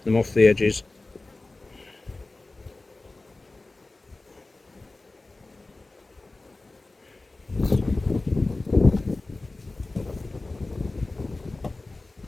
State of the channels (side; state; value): right; quieter; 3.2 dB